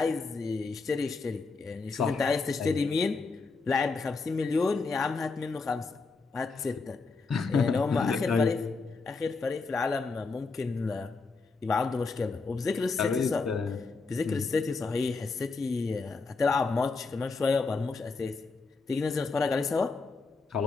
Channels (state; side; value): quieter; right; 4.2 dB